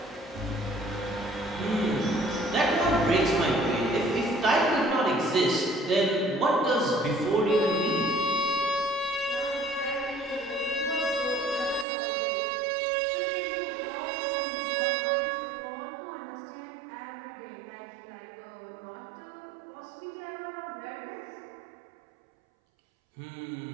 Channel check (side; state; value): left; drops out; at 11.9 s